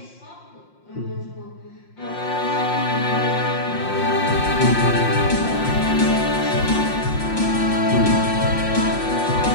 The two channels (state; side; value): late; right; 5.6 ms